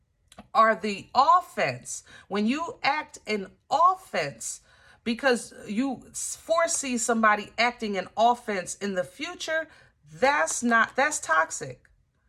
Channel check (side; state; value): both; identical; correlation 1.00